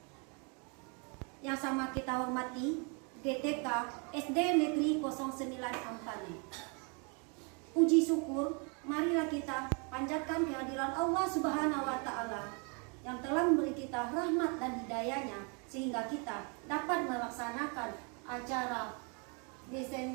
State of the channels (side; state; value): left; quieter; 35.2 dB